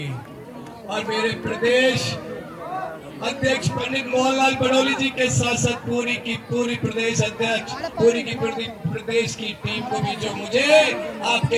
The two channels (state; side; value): identical; both; correlation 1.00